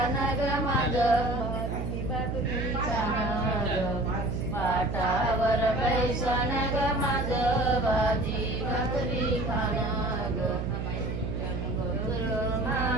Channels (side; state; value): right; noise; hum, 3 dB below the sound